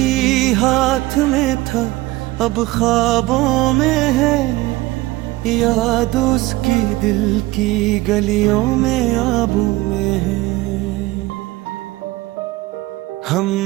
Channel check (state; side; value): quieter; left; 19.2 dB